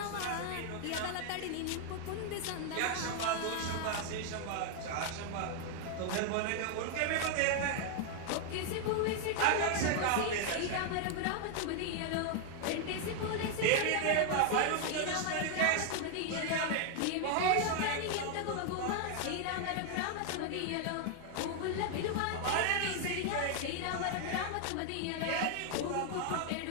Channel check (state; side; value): different; both; correlation 0.00